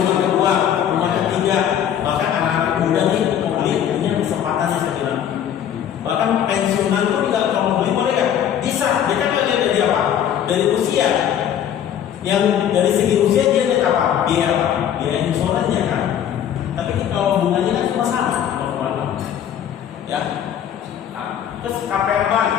kedua, rumah ketiga, bahkan anak-anak muda nih mau beli, punya kesempatannya saya bilang. Bahkan pensiunan pun juga kalau mau beli boleh ya? Bisa. Dia kan nggak lihat dari apa? Dari usia. Yang dari segi usia dia lihat apa? Biaya apa? Biaya insurannya kan. Tapi kalau bunganya kan cuma sama, ya. Nah, terus KPR Bank,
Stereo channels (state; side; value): quieter; right; 9.7 dB